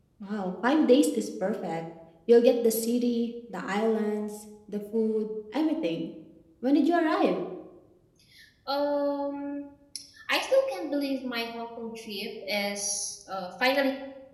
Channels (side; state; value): both; identical; correlation 1.00